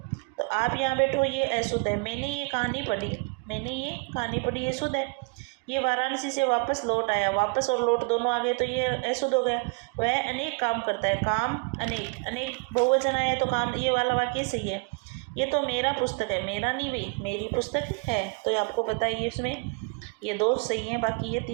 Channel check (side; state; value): left; quieter; 31.2 dB